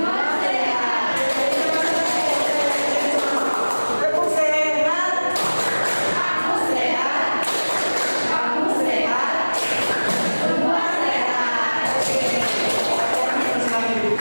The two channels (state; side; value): inverted; both; correlation -1.00